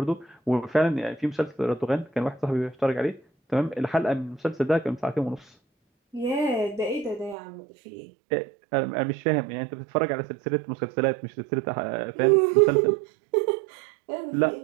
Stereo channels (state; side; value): drops out; left; at 7.4 s